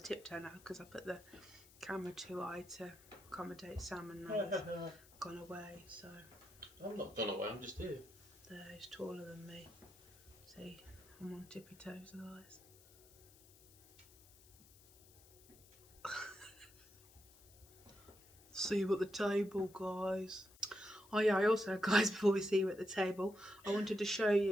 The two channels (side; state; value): left; noise; hiss, 24 dB below the sound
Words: to tiptoe now because I put the camera too high to accommodate Sam, and now he's gone away, so. I'm not gone away, I'm just here. There, he's taller than me. See, I'm on tippy toes otherwise. See you at the table, guys. Oh yeah, I also, guys, before we see you at the table, I wanted to show